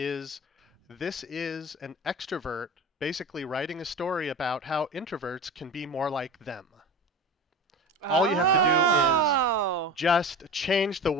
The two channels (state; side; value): normal; both; correlation 0.31